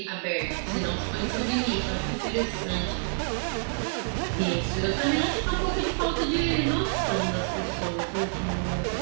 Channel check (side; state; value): left; silent; 59 dB below the other